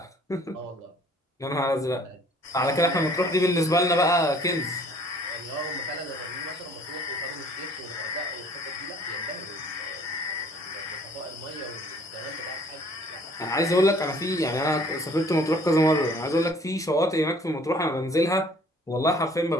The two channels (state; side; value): normal; both; correlation 0.55